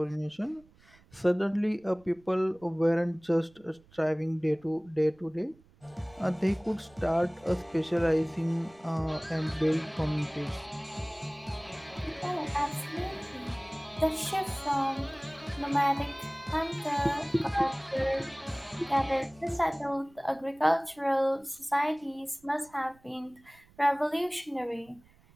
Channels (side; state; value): right; noise; rumble, 28 dB below the sound